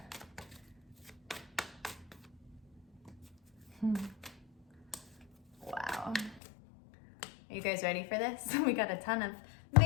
Wow. Are you guys ready for this? We got a ton of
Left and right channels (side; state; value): right; drops out; at 6.4 s